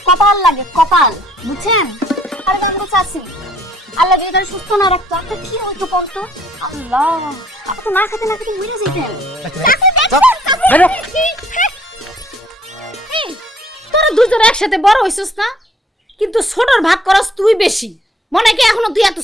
কপাল লাগে কপাল, বুঝছেন? আরে বান্ধব চাচি, আল্লাহ যদি তারা সুস্থ না রাখতো আপনার কি হইতো বলতো? আল্লাহ, আপনি তো না খেতে না খেতে মরে যেতেন। চাচি, দেখছেন? চাচি, এই, তোরা দুজন একসাথে বড় হইছিস না, কিন্তু ছোটর ভাগ করস তুই বেশি। মনে কি এখনো তুই এত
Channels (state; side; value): normal; both; correlation 0.63